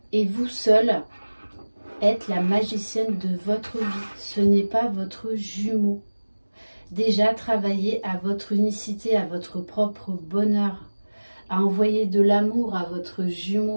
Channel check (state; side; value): inverted; both; correlation -1.00